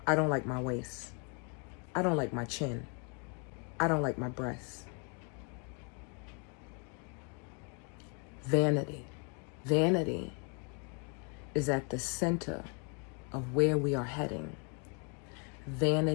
I don't like my waist. I don't like my chin. I don't like my breasts. Vanity. Vanity is at the center of where we are heading.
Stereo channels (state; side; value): quieter; right; 36.5 dB